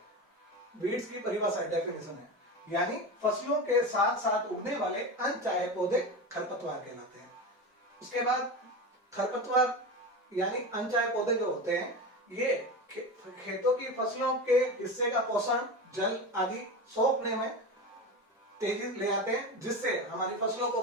वीड्स की परिभाषा डेफिनेशन है, यानी फसलों के साथ साथ उगने वाले अनचाहे पौधे खरपतवार कहलाते हैं। उसके बाद खरपतवार यानी अनचाहे पौधे जो होते हैं ये खेतों की फसलों के हिस्से का पोषण, जल आदि सोखने में तेजी ले आते हैं, जिससे हमारी फसलों को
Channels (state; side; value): normal; both; correlation 0.24